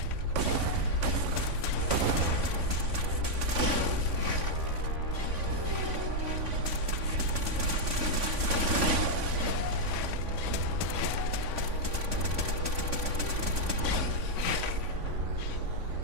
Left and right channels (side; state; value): left; late; 3.5 ms